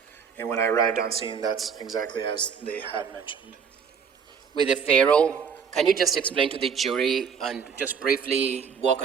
And when I arrived on scene, that's exactly as they had mentioned. With the FARO, can you just explain to the jury and just briefly walk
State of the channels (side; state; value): left; quieter; 6.6 dB